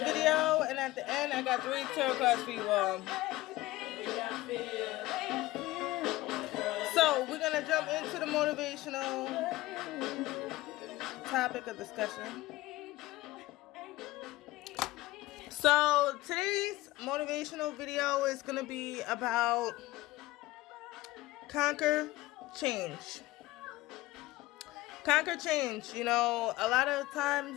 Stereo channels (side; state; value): right; quieter; 18.3 dB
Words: and at the end, I got 3 tarot cards for you all. So we're gonna jump into the motivational topic of discussion. So today's motivational video is gonna be about conquer change. Conquer change. You know, a lot of